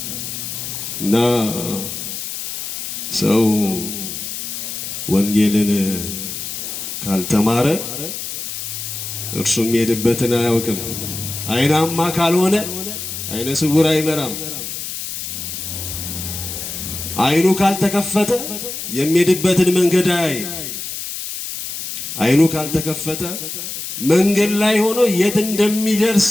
እና ሰው ወንጌልን ካልተማረ እርሱ የሚሄድበትን አያውቅም። አይናማ ካልሆነ አይነ ስውር አይመራም። አይኑ ካልተከፈተ የሚሄድበትን መንገድ አያይ። አይኑ ካልተከፈተ መንገድ ላይ ሆኖ የት እንደሚደርስ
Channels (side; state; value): left; noise; hiss, 6 dB below the sound